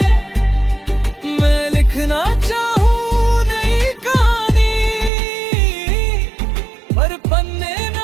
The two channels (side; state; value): left; drops out; at 5.1 s